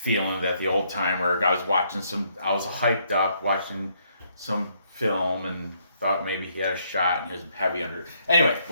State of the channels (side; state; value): both; inverted; correlation -0.71